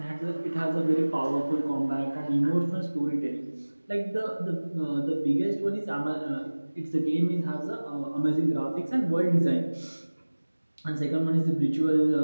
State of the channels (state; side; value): inverted; both; correlation -1.00